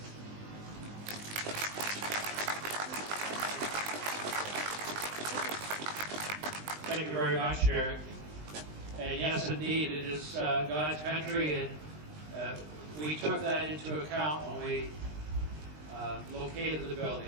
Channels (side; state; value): left; late; 20 ms